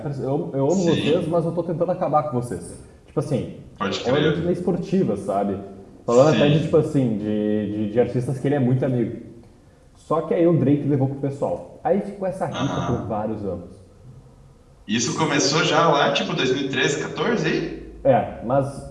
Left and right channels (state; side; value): identical; both; correlation 1.00